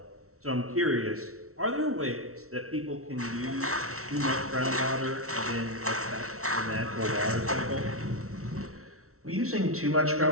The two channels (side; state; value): left; late; 0.63 ms